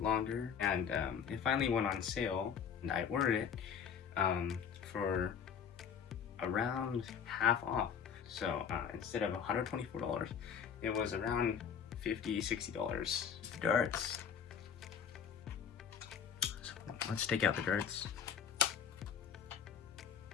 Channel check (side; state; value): right; quieter; 7.5 dB